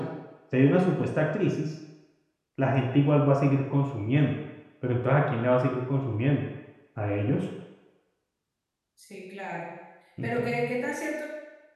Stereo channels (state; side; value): identical; both; correlation 1.00